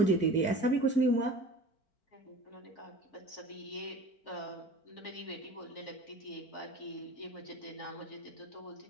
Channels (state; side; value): late; right; 4.5 ms